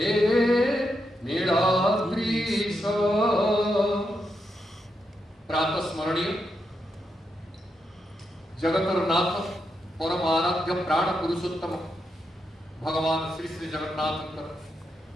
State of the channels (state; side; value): normal; both; correlation 0.83